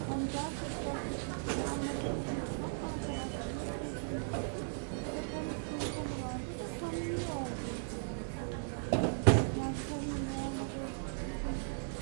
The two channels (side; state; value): left; silent; digital silence